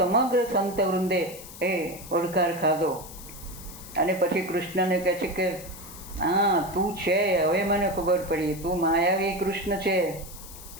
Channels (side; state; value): left; noise; hiss, 15 dB below the sound